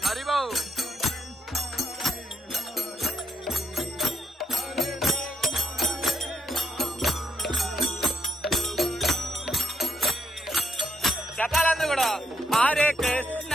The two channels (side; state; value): both; normal; correlation 0.79